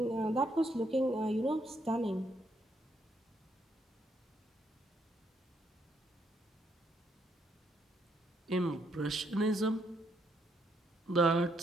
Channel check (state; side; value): normal; both; correlation 0.74